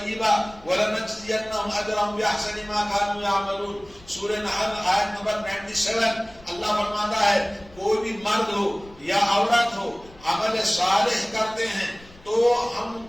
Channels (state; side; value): noise; left; rumble, 23 dB below the sound